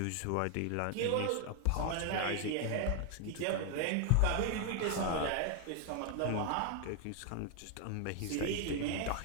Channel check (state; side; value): different; both; correlation 0.00